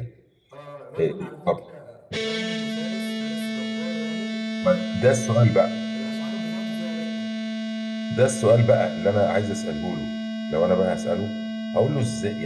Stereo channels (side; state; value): both; identical; correlation 1.00